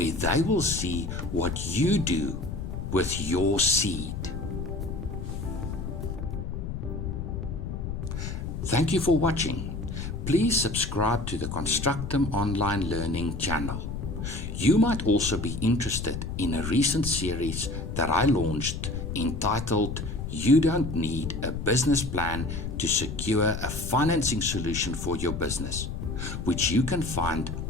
they will see what you do with your seed. Thank you for watching. Please subscribe to the Constructum Online Learning channel. You might also be interested in a recent series that I launched entitled You Don't Need a Business Plan to Secure a Financing Solution for Your Business, which you can find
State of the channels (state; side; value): noise; left; rumble, 5 dB below the sound